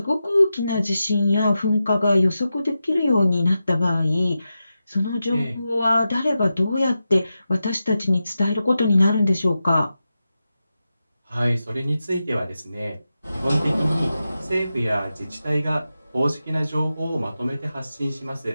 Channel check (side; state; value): both; inverted; correlation -0.91